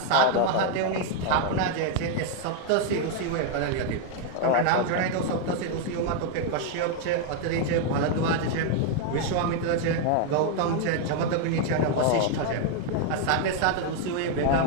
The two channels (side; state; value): both; different; correlation 0.00